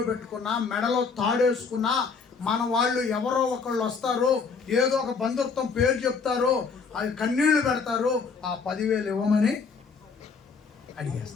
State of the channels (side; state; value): right; quieter; 5.2 dB